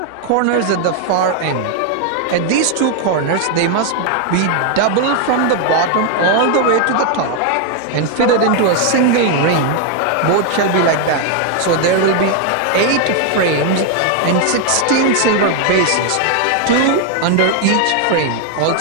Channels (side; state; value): both; different; correlation 0.01